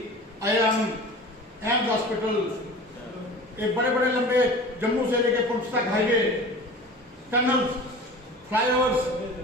IIM, एम्स हॉस्पिटल, एक बड़े बड़े लंबे जम्मू से लेकर पुंछ तक highway, tunnel, flyovers,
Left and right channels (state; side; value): normal; both; correlation 0.38